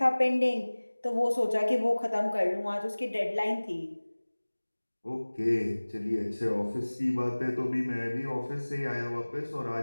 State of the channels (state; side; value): inverted; both; correlation -1.00